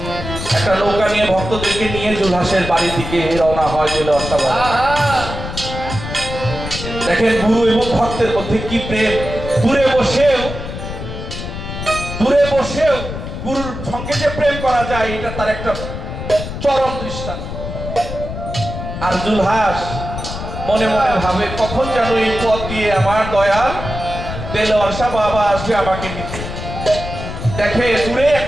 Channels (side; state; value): left; noise; rumble, 7 dB below the sound